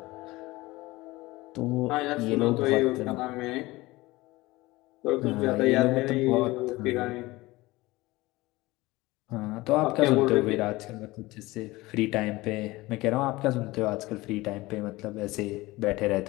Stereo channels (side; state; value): right; quieter; 20.2 dB